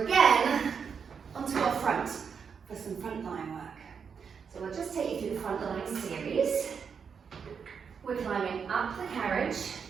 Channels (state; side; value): quieter; left; 6.4 dB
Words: onto our front for some front line work. So we'll just take you through the front line series. We're climbing up the carriage,